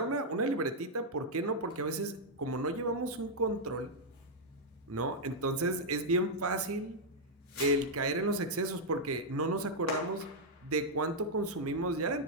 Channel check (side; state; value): both; normal; correlation -0.04